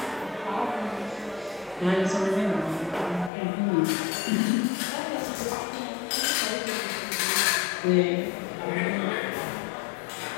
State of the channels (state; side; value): drops out; right; at 3.3 s